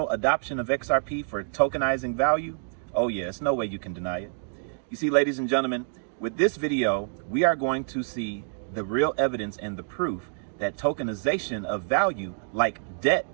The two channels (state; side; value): silent; left; digital silence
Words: adoption of XRP for tokenizing value, oh yeah, it's no way you can deny it. You see, ladies and gentlemen, with this video, we are going to see the real evidence and the proof that tokenization of value, like debt,